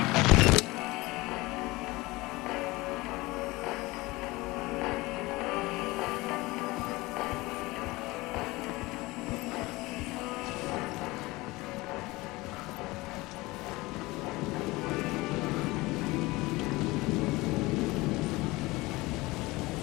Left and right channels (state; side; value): quieter; right; 21.4 dB